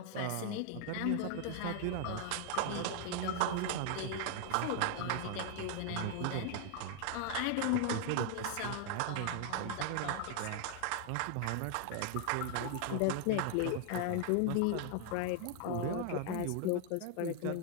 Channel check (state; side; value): different; both; correlation 0.00